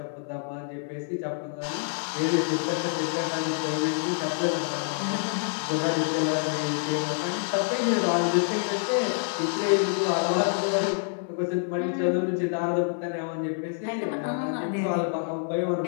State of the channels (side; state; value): right; silent; 60 dB below the other